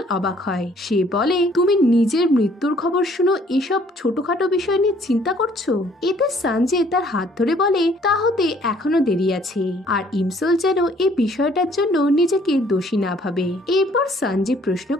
অবাক হয়। সে বলে, তুমি নিজের মৃত্যুর খবর শুনো এসব ছোটখাটো বিষয় নিয়ে চিন্তা করছো? এতে সঞ্জে তার হাত ধরে বলে, তা হতে এখনো দেরি আছে। আর ইমসোল যেন এই বিষয়টার জন্য নিজেকে দোষী না ভাবে। এরপর সঞ্জে প্রশ্ন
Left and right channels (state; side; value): normal; both; correlation 0.60